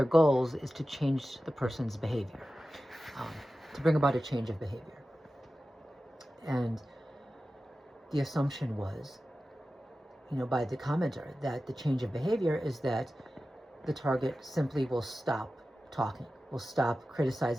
goals is to change the person's behavior, to bring about a change of behavior. And the assumption was, by the commenter, that the change of behavior is that the target simply will stop talking, will stop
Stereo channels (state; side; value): normal; both; correlation 0.94